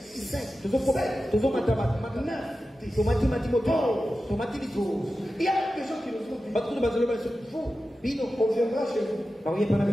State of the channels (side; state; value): both; normal; correlation 0.93